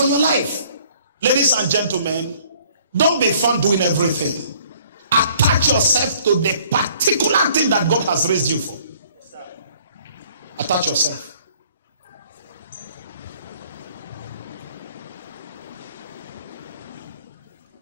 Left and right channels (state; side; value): inverted; both; correlation -0.58